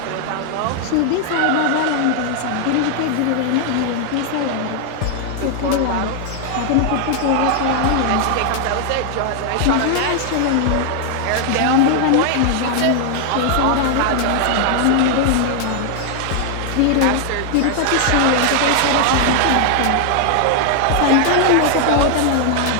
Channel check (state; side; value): different; both; correlation 0.00